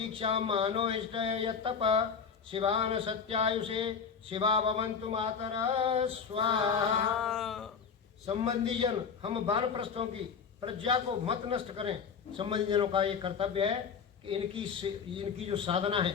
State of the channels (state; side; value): quieter; right; 6.3 dB